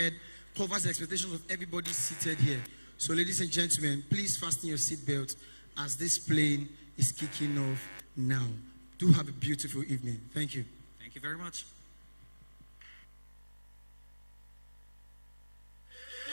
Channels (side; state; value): both; inverted; correlation -1.00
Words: covers the expectations of everybody seated here. So, ladies and gentlemen, please fasten your seatbelt as this plane is kicking off now. Do have a beautiful evening. Thank you. Thank you very much.